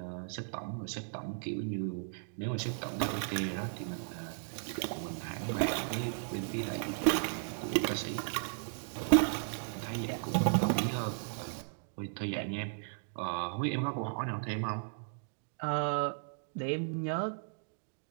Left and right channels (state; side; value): silent; left; digital silence